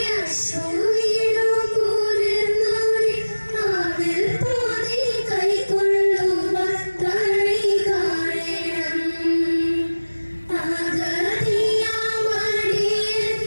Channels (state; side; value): inverted; both; correlation -1.00